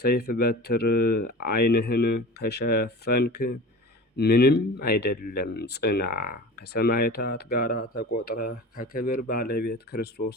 በትር ዓይንህን ከሸፈንክ ምንም አይደለም፣ ጽና፣ ከሰማዕታት ጋር ተቆጥረህ ከክብር ባለቤት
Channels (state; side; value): normal; both; correlation 0.36